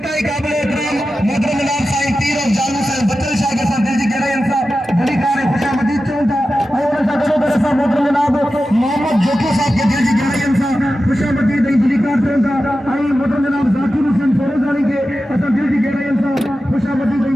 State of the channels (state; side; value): normal; both; correlation 0.93